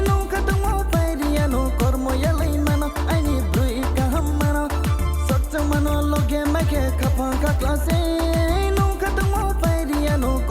nunca tomo pairiano cormo ya lei mano ani brui kahamano sakta mano loge make kapanga clase nunca tomo pairiano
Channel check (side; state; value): both; identical; correlation 1.00